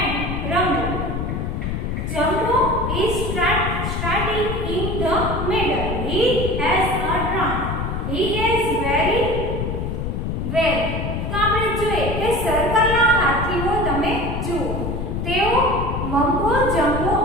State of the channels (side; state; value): left; noise; rumble, 2 dB below the sound